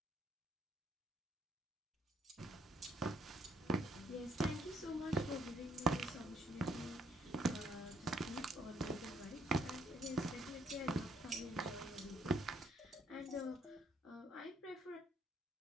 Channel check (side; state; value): both; normal; correlation 0.68